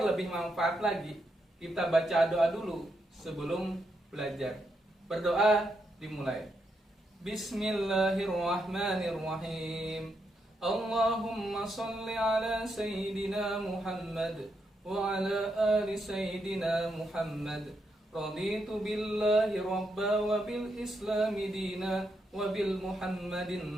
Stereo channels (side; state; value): both; normal; correlation 0.81